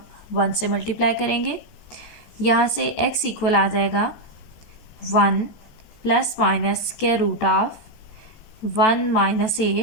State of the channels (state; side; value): late; right; 14 ms